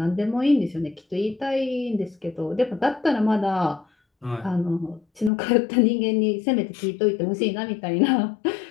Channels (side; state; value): right; drops out; at 5.3 s